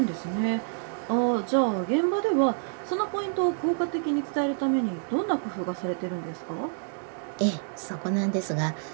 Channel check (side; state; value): left; silent; 60 dB below the other